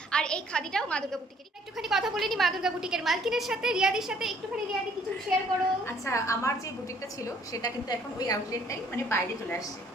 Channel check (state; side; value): normal; both; correlation 0.62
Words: আর এই খাদিটাও মা দুর্গা বুটিকের। একটুখানি কথা বলে নি মা দুর্গা বুটিকের মালকিনের সাথে, রিয়াদির সাথে। একটুখানি রিয়াদি কিছু শেয়ার করো। আচ্ছা, আমার যে বুটিকটা ছিল সেটা কিন্তু এখন ওই আউটলেটটাই মানে বাইরে চলে আসছে,